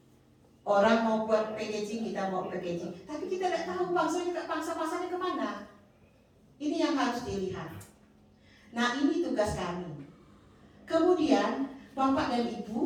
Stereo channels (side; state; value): both; identical; correlation 1.00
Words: Orang mau buat packaging, kita mau packaging. Tapi kita tidak tahu pangsa pasarnya kemana. Ini yang harus dilihat. Nah, ini tugas kami. Kemudian Bapak dan